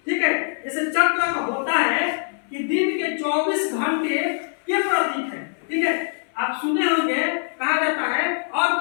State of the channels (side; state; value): right; silent; 61 dB below the other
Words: ठीक है, जैसे चक्र का होता है कि दिन के 24 घंटे के प्रतीक है। ठीक है, आप सुने होंगे, कहा जाता है और